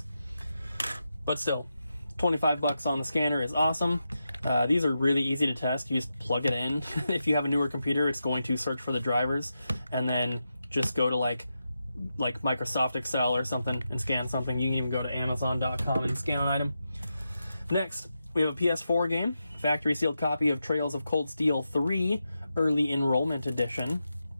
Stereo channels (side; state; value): both; inverted; correlation -0.88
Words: But still, 25 bucks on the scanner is awesome. These are really easy to test. You just plug it in. If you have a newer computer, it's going to search for the drivers, and then just go to like Microsoft Excel or something and scan something. You can even go to Amazon.com and scan an item. Next, we have a PS4 game, factory sealed copy of Trails of Cold Steel 3 Early Enrollment Edition.